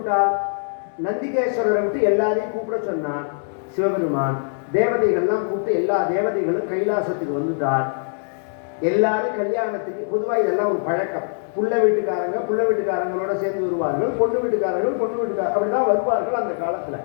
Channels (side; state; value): right; silent; digital silence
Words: நந்திகேஸ்வரரை விட்டு எல்லாரையும் கூப்பிட சொன்னான் சிவபெருமான். தேவதைகள்லாம் கூப்பிட்டு எல்லா தேவதைகளும் கைலாசத்துக்கு வந்துட்டார். எல்லாரும் கல்யாணத்துக்கு பொதுவாக இதெல்லாம் ஒரு பழக்கம். புள்ள வீட்டுக்காரங்களோட சேர்ந்து வருவார்கள், பொண்ணு வீட்டுக்காரர்கள் அப்படிதான் வருவார்கள் அந்த காலத்துல.